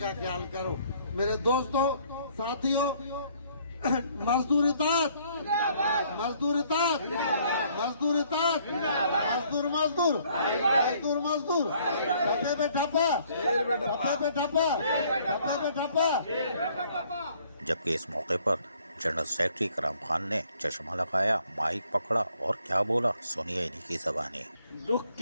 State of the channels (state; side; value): inverted; both; correlation -0.63